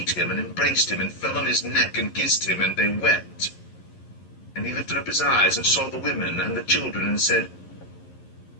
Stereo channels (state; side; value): late; right; 11 ms